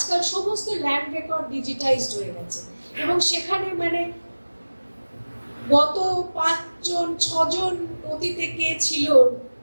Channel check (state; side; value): inverted; both; correlation -1.00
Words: সমস্ত ল্যান্ড রেকর্ড ডিজিটাইজড হয়ে গেছে এবং সেখানে মানে গত 5-6 জন অতীতে কে ছিল,